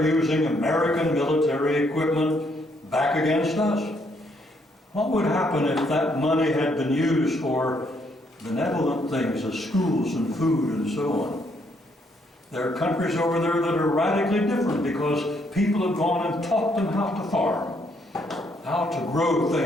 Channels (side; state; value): both; normal; correlation 0.72